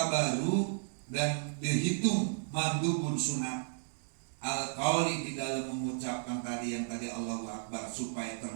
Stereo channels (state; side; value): silent; left; digital silence